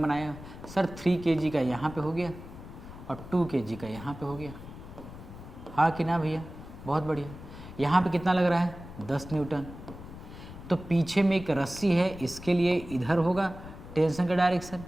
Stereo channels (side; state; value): left; noise; rumble, 14 dB below the sound